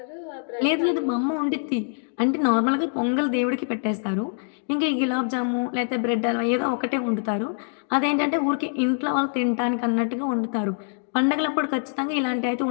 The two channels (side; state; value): right; silent; 62 dB below the other